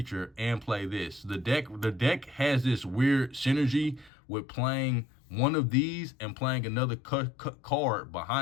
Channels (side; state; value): right; drops out; at 4.1 s